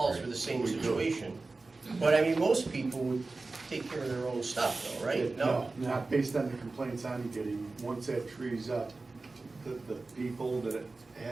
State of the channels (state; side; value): quieter; left; 3.5 dB